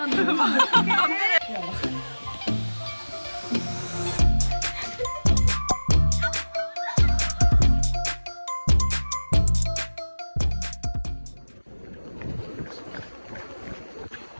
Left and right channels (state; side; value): inverted; both; correlation -1.00